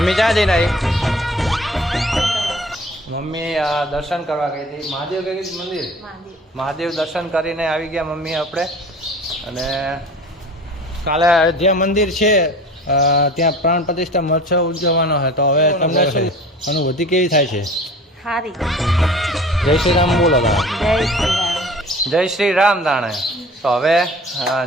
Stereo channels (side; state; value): both; normal; correlation 0.43